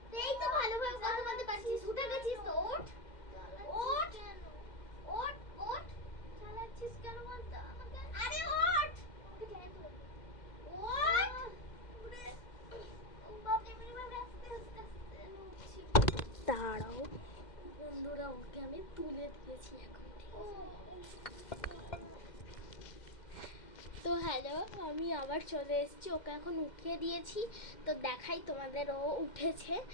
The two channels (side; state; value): right; late; 2.1 ms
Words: এই তো ভালোভাবে কথা বলতে পারছিস, উঠে গেছিস তো, ওঠ ওঠ ওঠ ওঠ। চালাচ্ছিস কেন বলতো আমাকে? আরে ওঠ, ওঠ। দাঁড়াও বন্ধুরা, ওকে আমি তুলে দিয়েছি এখন, ঠিক আছে? তো হ্যালো, আমি আবার চলে এসেছি, ওকে এখন উঠিয়ে দিয়েছি। তো দেখাই তোমাদের, ও উঠেছে